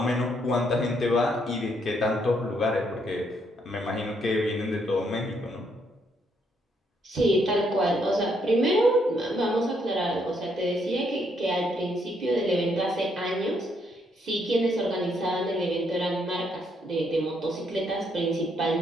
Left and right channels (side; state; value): both; normal; correlation 0.73